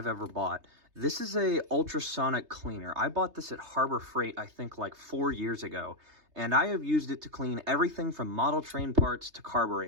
ever bought. This is a ultrasonic cleaner. I bought this at Harbor Freight, I think like 4 years ago, and I have used it to clean everything from model train parts to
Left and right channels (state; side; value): late; left; 3.3 ms